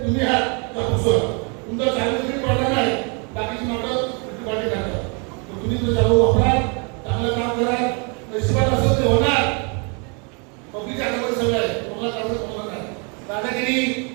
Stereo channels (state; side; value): quieter; left; 34.8 dB